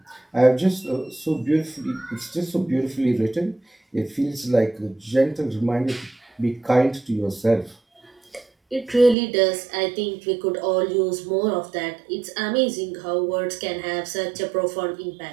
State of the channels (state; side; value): drops out; left; at 9.2 s